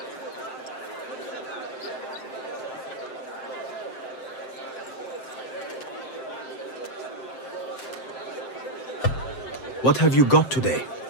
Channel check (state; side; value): late; right; 7.7 ms